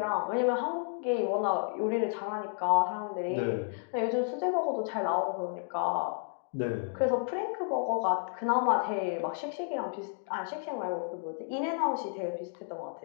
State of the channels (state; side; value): silent; right; 57 dB below the other